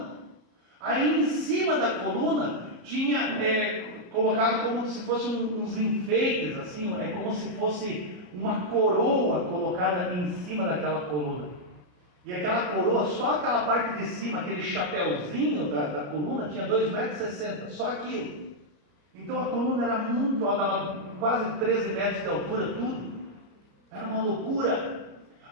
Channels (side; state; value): left; late; 33 ms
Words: Aí em cima da coluna tinha colocado como se fossem uns enfeites, assim, como se fosse uma coroa colocada em cima daquela coluna. E aquela coroa, só aquela parte de cima, aquele chapéuzinho da coluna, tinha 2,60 metros, só aquilo. Então a coluna era muito alta, dava quase 13 metros de altura, tudo. Era uma loucura.